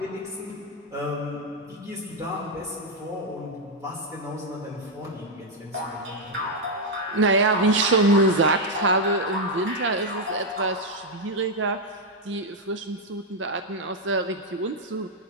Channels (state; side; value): normal; both; correlation 0.00